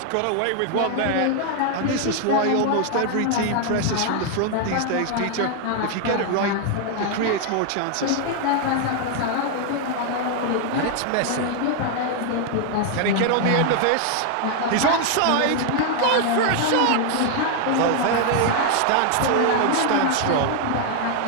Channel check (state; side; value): different; both; correlation 0.00